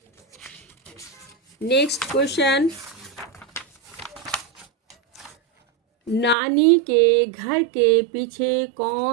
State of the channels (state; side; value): drops out; left; at 6.4 s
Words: नेक्स्ट क्वेश्चन, नानी के घर के पीछे